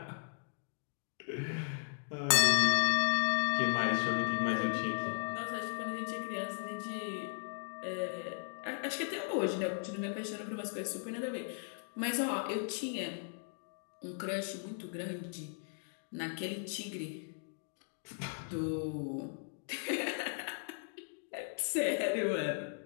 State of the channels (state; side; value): silent; right; digital silence